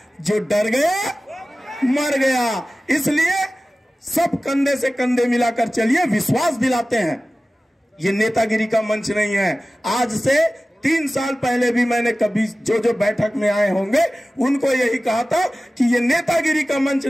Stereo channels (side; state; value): both; normal; correlation 0.96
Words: जो डर गया मर गया। इसलिए सब कंधे से कंधे मिलाकर चलिए, विश्वास दिलाते हैं। ये नेतागिरी का मंच नहीं है। आज से 3 साल पहले भी मैंने कभी जो बैठक में आए होंगे उनको यही कहा था कि ये नेतागिरी का मंच